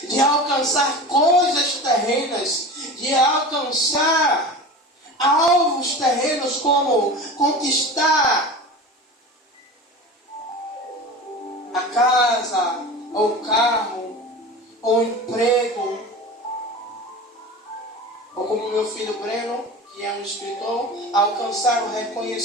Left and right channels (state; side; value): normal; both; correlation 0.33